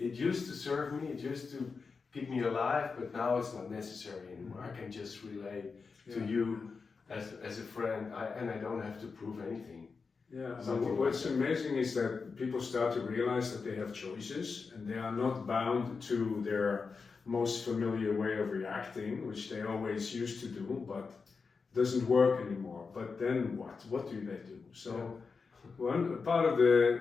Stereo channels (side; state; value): right; quieter; 4.9 dB